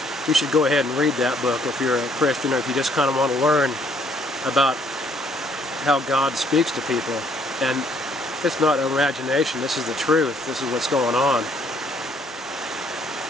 you should go ahead and read that book if you're a Christian, or if you just kind of want to learn about how God speaks to people. And it's not imagination, this is the truth, this is what's going on.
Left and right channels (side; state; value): both; normal; correlation 0.65